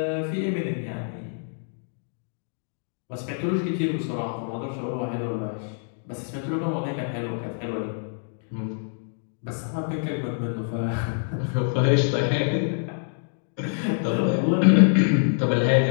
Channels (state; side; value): silent; right; digital silence